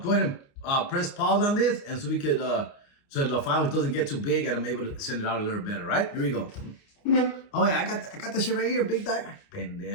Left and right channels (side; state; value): right; late; 29 ms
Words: ahead and press pause on this, and so we could, so the file doesn't get too big, and I'm able to send it out a little better, right? Here we go. Oh yeah, I got that shit right here, big dog.